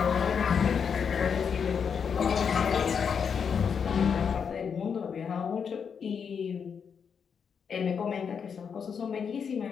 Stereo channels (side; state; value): right; quieter; 6.7 dB